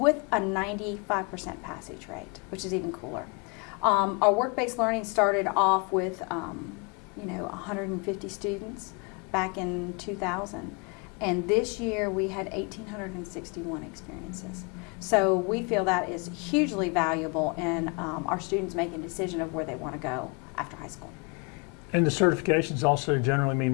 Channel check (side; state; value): right; quieter; 32.7 dB